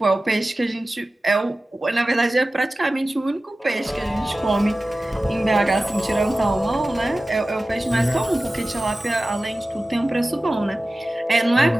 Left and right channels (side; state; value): both; normal; correlation 0.96